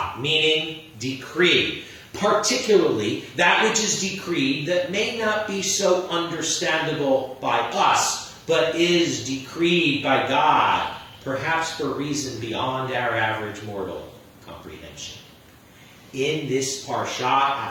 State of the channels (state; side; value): identical; both; correlation 1.00